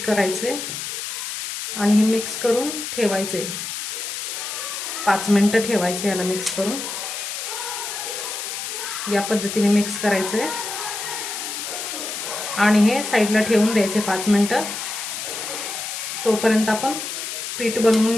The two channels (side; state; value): left; noise; hiss, 5 dB below the sound